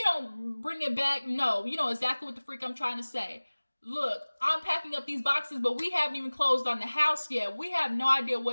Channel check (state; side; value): inverted; both; correlation -1.00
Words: don't bring it back, no, you know exactly what the freak I'm trying to say. Look, I'm packing up these boxes, but we haven't even closed on the house yet. We have no idea